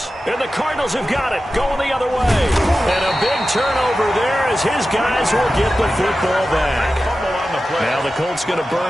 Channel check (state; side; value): normal; both; correlation 0.93